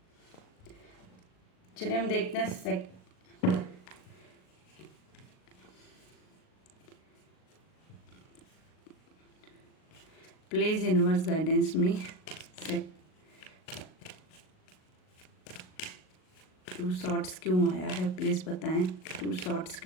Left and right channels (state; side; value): late; right; 38 ms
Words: चलिए हम देखते हैं please universe guidance me. Two shorts क्यों आया है प्लीज़ बताएं, टू शॉर्ट्स